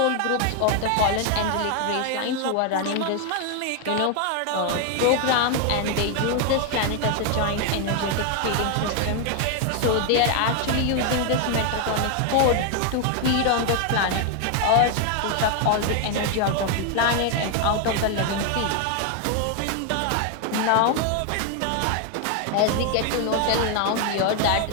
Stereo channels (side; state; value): both; different; correlation 0.00